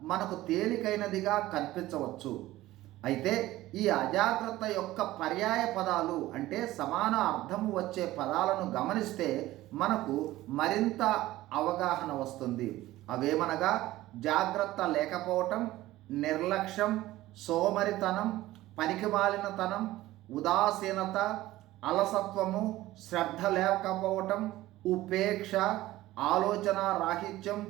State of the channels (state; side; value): quieter; left; 16.4 dB